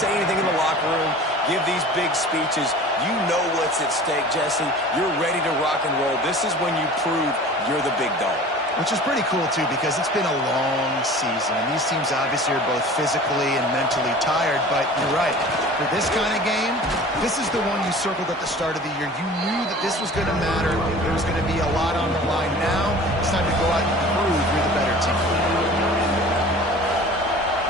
say anything in the locker room, give these big speeches. You know what's at stake, Jesse. You're ready to rock and roll. This is when you prove you're the big dog. Which is pretty cool, too, because it's been a long season. And these teams obviously are both physically and mentally tired. But you're right. For this kind of game, this is the one you circled at the start of the year. You knew that this was going to matter. There was going to be a lot on the line. Now it's time to go out and prove you're the better team.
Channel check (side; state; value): both; normal; correlation 0.42